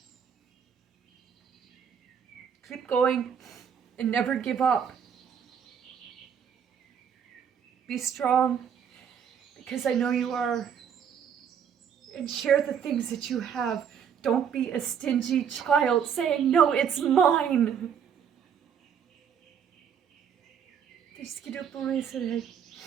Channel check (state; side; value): quieter; left; 7.8 dB